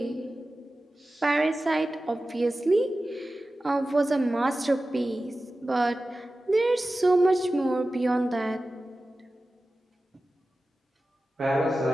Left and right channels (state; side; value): normal; both; correlation 0.95